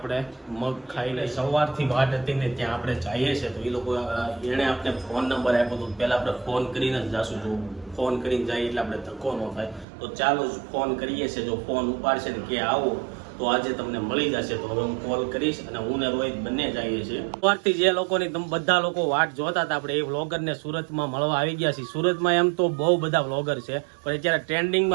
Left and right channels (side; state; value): left; drops out; at 9.9 s